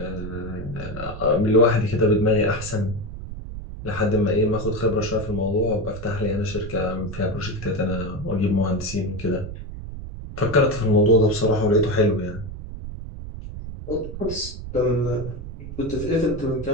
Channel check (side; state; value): right; noise; rumble, 10 dB below the sound